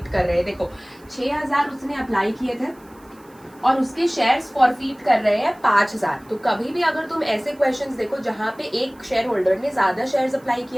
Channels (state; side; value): noise; right; hiss, 29 dB below the sound